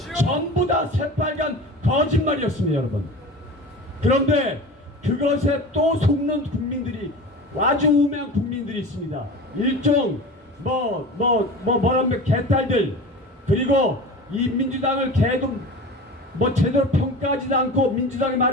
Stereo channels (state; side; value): normal; both; correlation 0.33